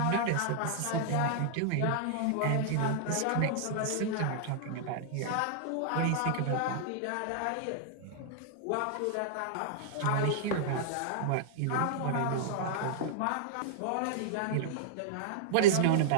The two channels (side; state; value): both; different; correlation -0.01